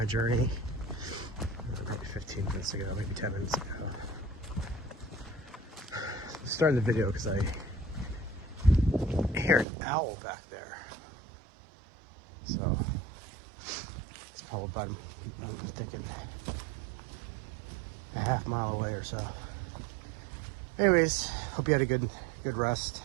journey maybe 15 minutes ago, maybe 10 minutes ago. Starting the video because I hear an owl back there. So it's probably about, I'm thinking, a half mile away or so. Anyways, hope you had a good rest,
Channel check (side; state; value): left; drops out; at 9.7 s